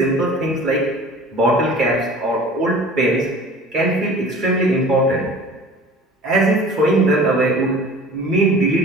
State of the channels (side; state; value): both; normal; correlation 0.43